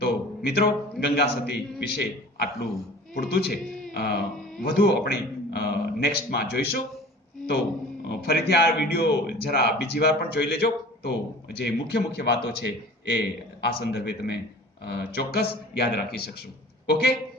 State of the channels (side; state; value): both; normal; correlation 0.43